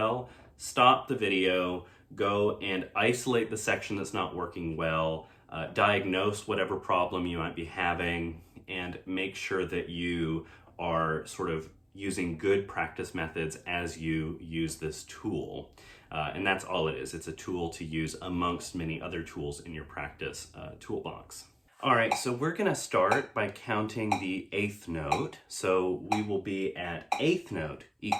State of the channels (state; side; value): identical; both; correlation 1.00